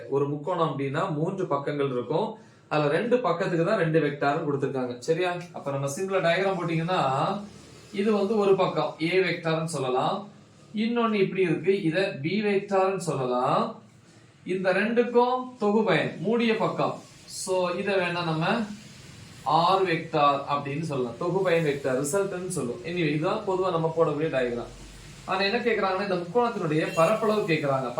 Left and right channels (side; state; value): both; identical; correlation 1.00